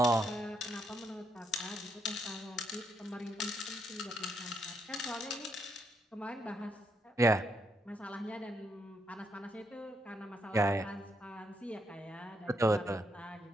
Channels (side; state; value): both; normal; correlation 0.77